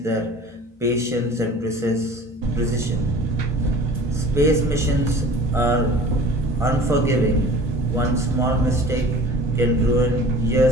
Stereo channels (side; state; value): both; normal; correlation 0.44